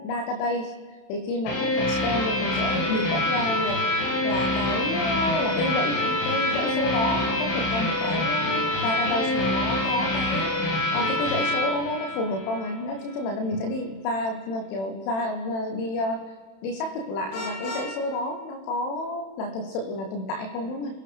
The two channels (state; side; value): late; right; 31 ms